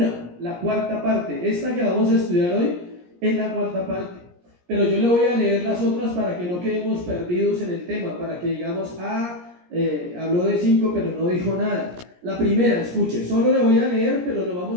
la cuarta parte. Esta que vamos a estudiar hoy es la cuarta parte. Pero yo le voy a leer las otras para que no quedemos perdidos en el tema, para que digamos, habló de 5 pero no dijo nada. La primera, escuche, solo le voy a leer, pero nos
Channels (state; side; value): late; left; 17 ms